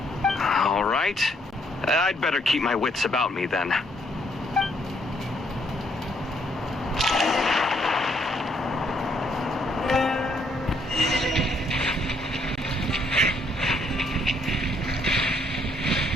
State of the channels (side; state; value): both; normal; correlation 0.69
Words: All right. I'd better keep my wits about me then.